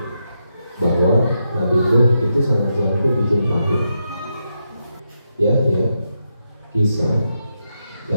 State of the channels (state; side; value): inverted; both; correlation -0.84